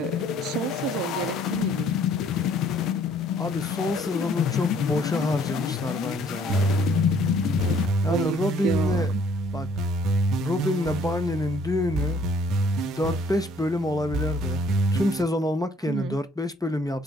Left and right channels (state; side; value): normal; both; correlation 0.61